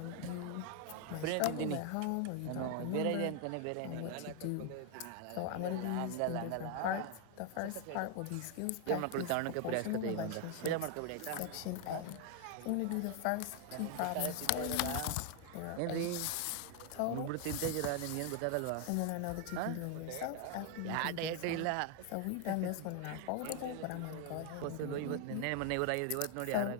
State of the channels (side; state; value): both; different; correlation 0.00